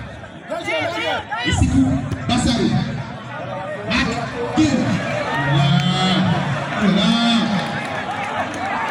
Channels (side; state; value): both; identical; correlation 1.00